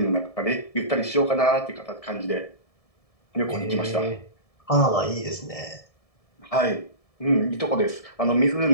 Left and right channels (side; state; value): right; late; 1.7 ms